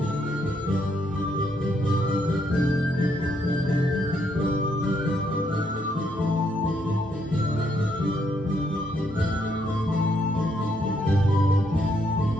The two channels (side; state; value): both; normal; correlation 0.74